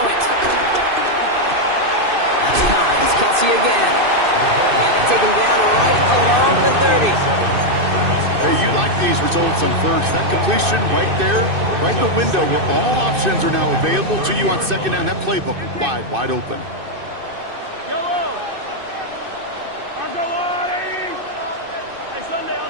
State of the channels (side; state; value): left; late; 2.6 ms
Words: it. That's time. It's Kelsey again. And they take him down right along the 30. Hey, you like these results on first. That completion right there, right in the window where all options are now available to you on second down. That playbook wide open. Yellow. I'll go on. Hey, Sunday on